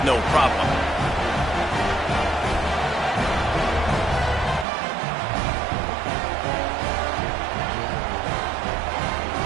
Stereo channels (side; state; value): left; drops out; at 4.7 s